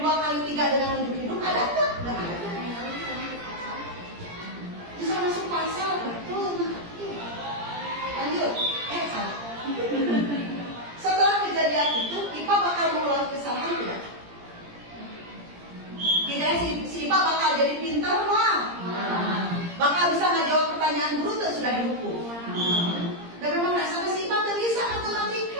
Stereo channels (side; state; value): left; late; 17 ms